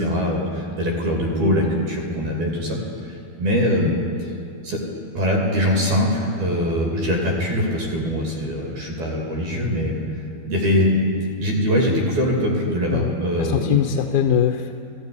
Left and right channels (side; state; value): left; late; 12 ms